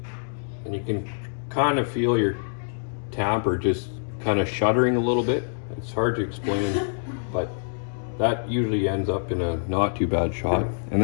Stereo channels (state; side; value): silent; right; digital silence